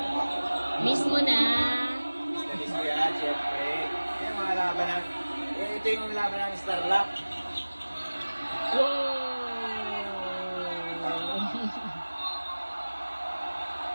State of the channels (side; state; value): both; inverted; correlation -1.00